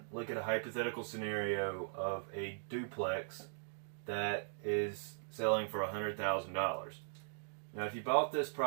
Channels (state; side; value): silent; left; digital silence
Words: look at a hypothetical scenario of a duplex that is selling for $100,000. Now if you bought this